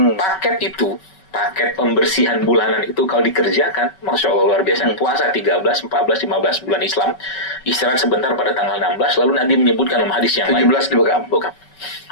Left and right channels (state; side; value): late; right; 5.3 ms